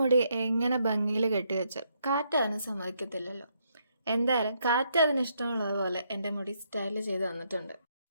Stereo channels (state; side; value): inverted; both; correlation -0.75